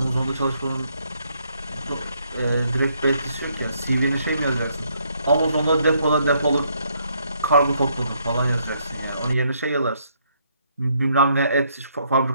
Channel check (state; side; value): inverted; both; correlation -0.71